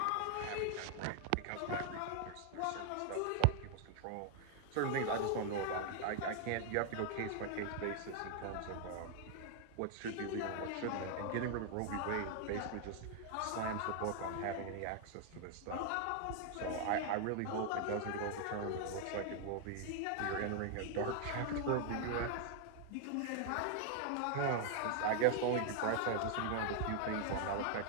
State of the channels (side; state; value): both; different; correlation 0.00